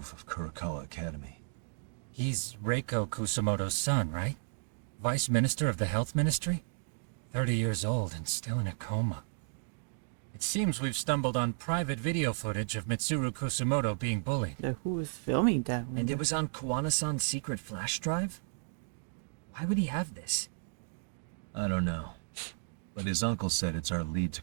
of Kurakawa Academy. He's Reiko Kusumoto's son, right? Vice Minister of the Health Ministry? 30 years old and still in a coma. It seems we've stumbled on private video footage of Mitsuru Kusumoto being bullied. Who was filming that one? And it was on Kawana-san's secret flash drive? Why would he have this? I don't know. But his uncle said it's our lead to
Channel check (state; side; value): silent; left; digital silence